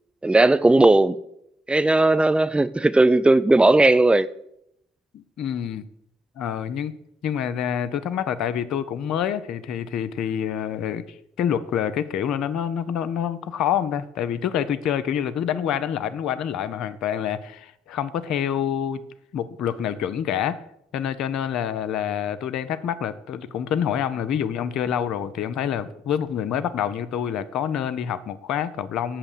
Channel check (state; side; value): normal; both; correlation 0.73